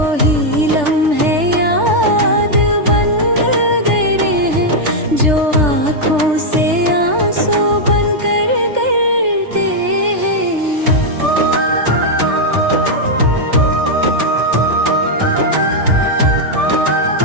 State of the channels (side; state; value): left; late; 3.3 ms